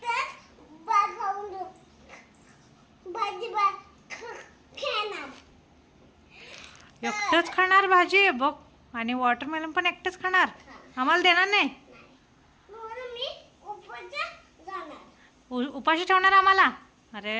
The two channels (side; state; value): both; identical; correlation 1.00